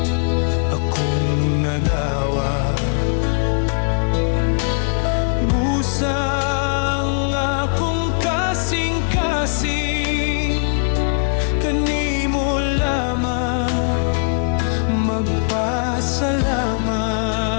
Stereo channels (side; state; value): right; silent; digital silence